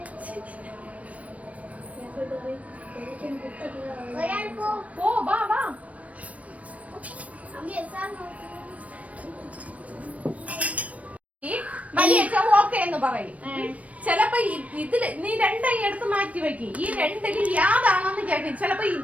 പോ വാ വാ. ഓക്കെ എന്ന് പറയും. ചിലപ്പോ ഇതില് നീ രണ്ടായി എടുത്ത് മാറ്റി വെക്കും. ഈ രണ്ടില് യാതാണെന്ന് കേൾക്കും. ചിലപ്പോ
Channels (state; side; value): late; left; 0.067 ms